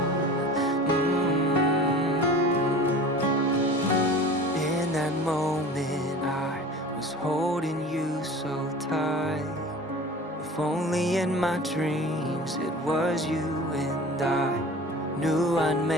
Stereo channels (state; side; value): normal; both; correlation 0.40